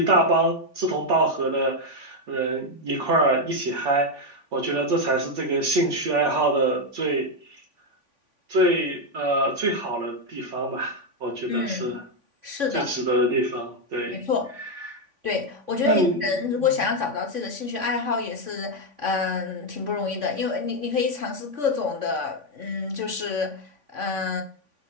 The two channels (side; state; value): left; late; 3.5 ms